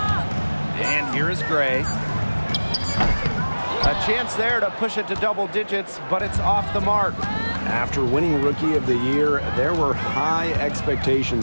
And here is Gray. A chance there to push it to double digits, but it's off the mark. After winning Rookie of the Year, there were high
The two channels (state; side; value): inverted; both; correlation -1.00